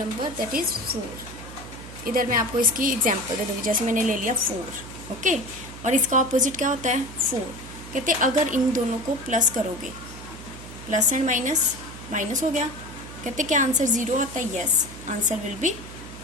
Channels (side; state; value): right; noise; hum, 14 dB below the sound